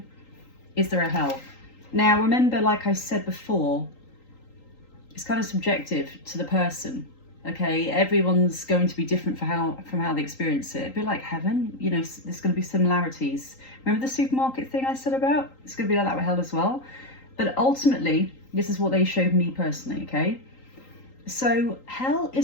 Is there a hell? Now remember, like I said before, it's kind of subjective to the person. Okay, everyone's going to be different from how they experience it. A bit like heaven, you know, there's going to be similarities. Remember the supermarket thing I said about? It's going to be like that with hell as well. But ultimately, this is what they showed me personally, okay? So hell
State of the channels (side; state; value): right; late; 3.8 ms